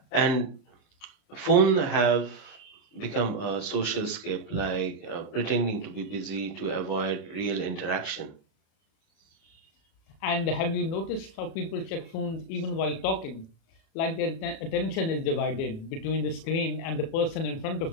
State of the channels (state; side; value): late; right; 37 ms